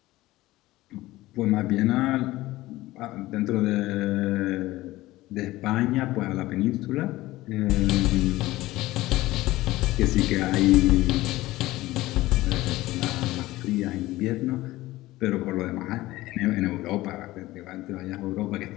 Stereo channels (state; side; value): quieter; right; 17.6 dB